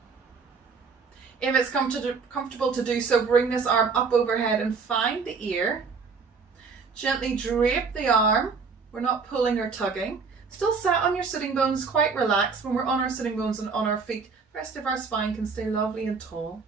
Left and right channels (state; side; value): quieter; left; 5.1 dB